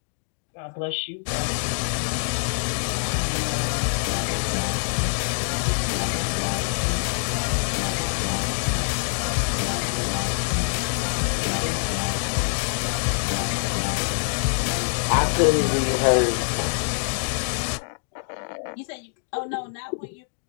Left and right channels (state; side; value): silent; right; digital silence